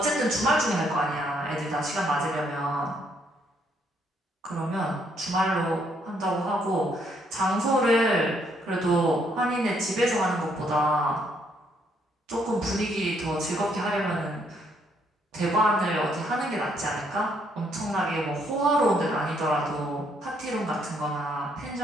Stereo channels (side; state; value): both; normal; correlation 0.71